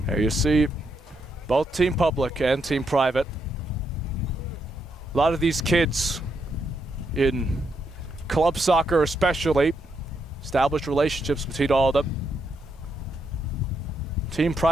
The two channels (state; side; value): normal; both; correlation 0.79